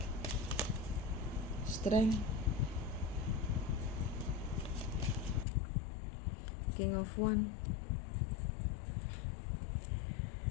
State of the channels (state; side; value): drops out; right; at 5.5 s